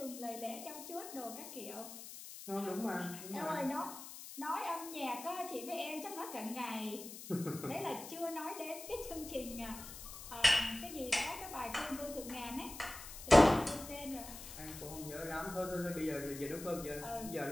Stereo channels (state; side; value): noise; left; hiss, 12 dB below the sound